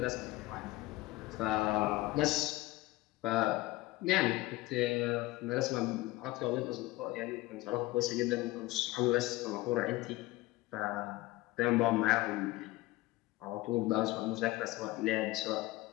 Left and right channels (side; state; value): right; quieter; 19.0 dB